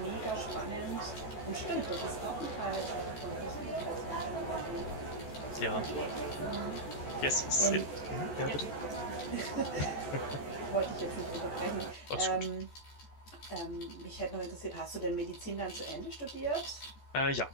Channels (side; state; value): right; late; 14 ms